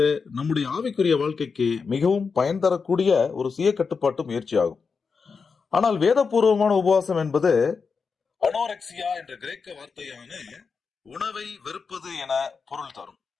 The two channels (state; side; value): quieter; right; 5.2 dB